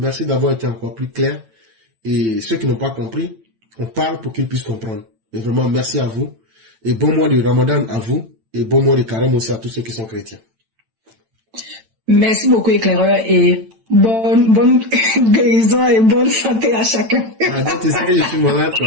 d'avoir été encore plus clair. Et ceux qui n'ont pas compris, on parle pour qu'ils puissent comprendre. Et vraiment, merci à vous. Et bon mois de Ramadan à vous. Et bon mois de Carême aussi à tous ceux qui sont chrétiens. Merci beaucoup, éclaireur, et bonne guérison et bonne santé à chacun. Ah, donc tu sais que je suis malade,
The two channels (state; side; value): late; left; 8.9 ms